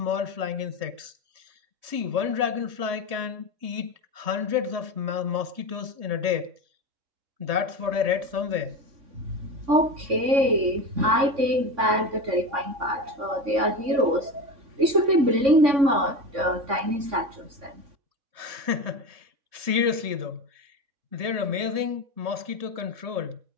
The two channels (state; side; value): late; left; 3.6 ms